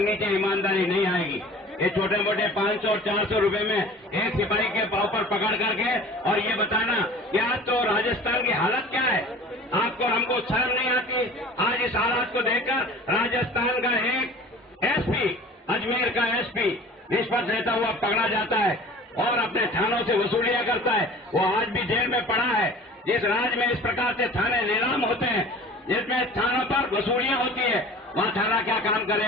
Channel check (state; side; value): normal; both; correlation 0.43